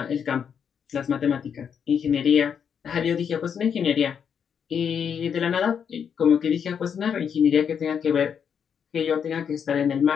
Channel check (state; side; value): quieter; right; 7.5 dB